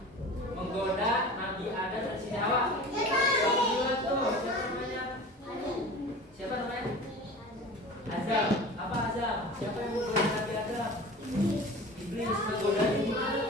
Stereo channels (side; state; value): both; normal; correlation 0.38